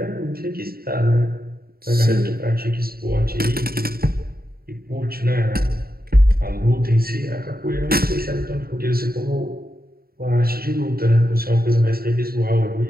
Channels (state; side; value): late; left; 0.44 ms